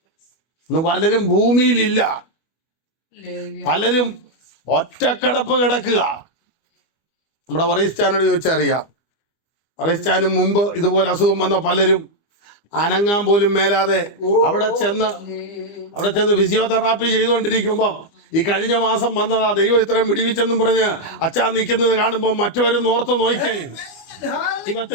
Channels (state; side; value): late; right; 25 ms